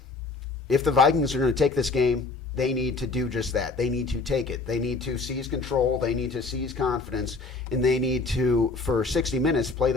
If the Vikings are going to take this game, they need to do just that. They need to take it. They need to seize control. They need to seize confidence. And they need to, for 60 minutes, play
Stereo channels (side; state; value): right; quieter; 3.8 dB